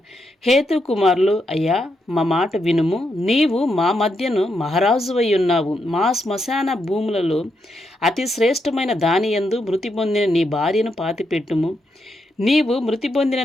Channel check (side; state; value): both; normal; correlation 0.81